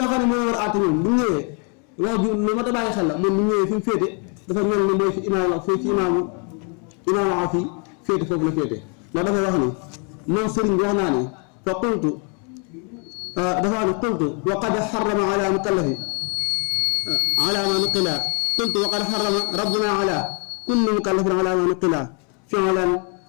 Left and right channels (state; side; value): quieter; right; 37.6 dB